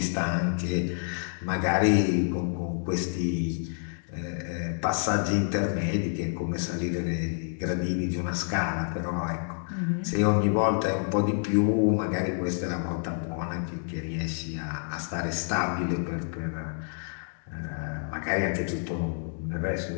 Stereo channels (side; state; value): right; silent; 59 dB below the other